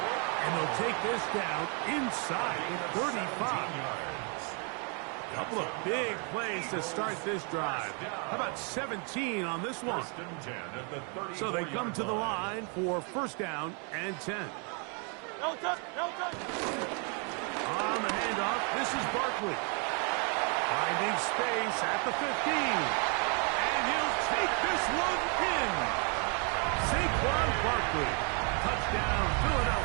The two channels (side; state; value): left; quieter; 37.1 dB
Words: And they'll take this down inside the 35. Couple of big plays to start this drive. How about 17 on this one? So they come to the line for first down and 10. On the handoff, this is Barkley. Finding space at the 15. And he'll take this one in. Saquon Barkley. Touchdown,